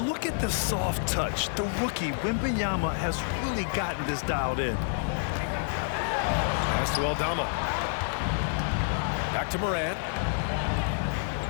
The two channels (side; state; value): right; silent; digital silence